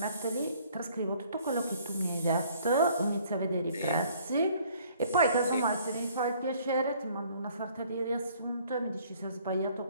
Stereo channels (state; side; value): inverted; both; correlation -0.58